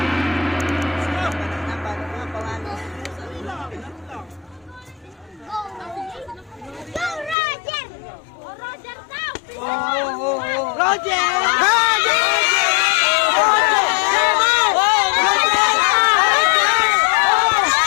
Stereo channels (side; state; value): right; drops out; at 7.4 s